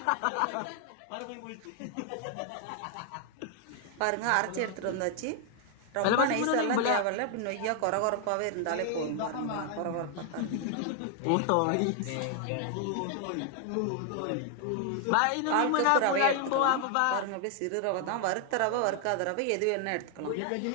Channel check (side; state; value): both; different; correlation 0.00